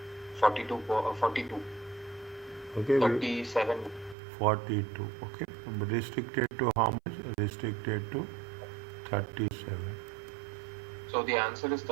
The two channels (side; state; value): left; drops out; at 4.2 s